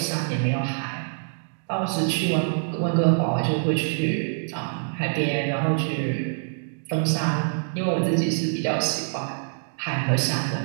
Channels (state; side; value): silent; left; digital silence